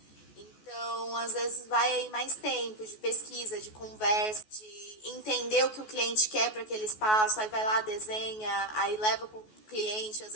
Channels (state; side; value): late; right; 14 ms